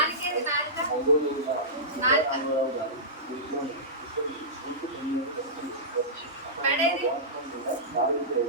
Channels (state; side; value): normal; both; correlation -0.17